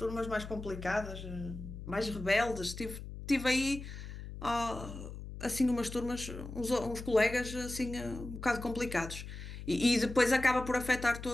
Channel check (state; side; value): noise; left; hum, 10 dB below the sound